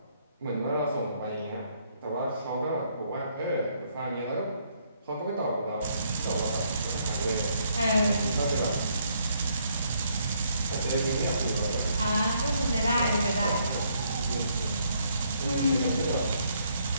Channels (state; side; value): inverted; both; correlation -0.70